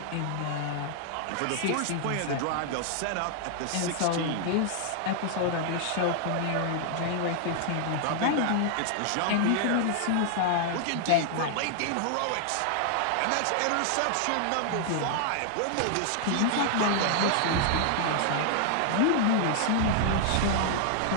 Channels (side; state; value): both; different; correlation 0.00